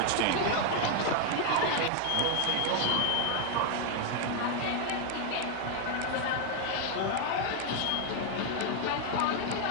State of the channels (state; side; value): different; both; correlation 0.00